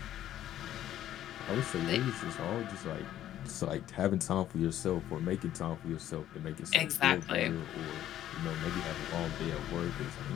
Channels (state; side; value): quieter; right; 12.2 dB